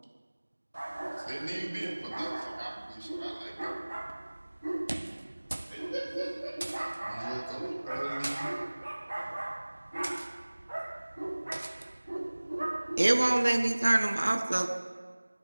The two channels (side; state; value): both; inverted; correlation -1.00